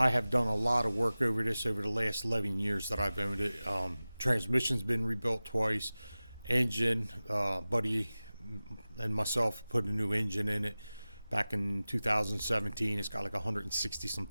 have done a lot of work over this over the last 11 years that I've owned it. Transmission's been rebuilt twice. Engine, buddy and myself put a new engine in it back in 2017. It's got like 160 some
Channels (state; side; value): inverted; both; correlation -0.97